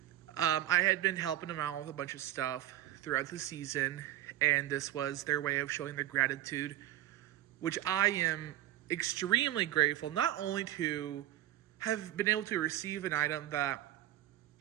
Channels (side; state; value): left; quieter; 13.9 dB